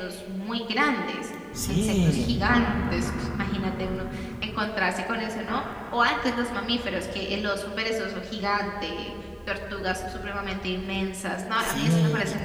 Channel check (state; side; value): identical; both; correlation 1.00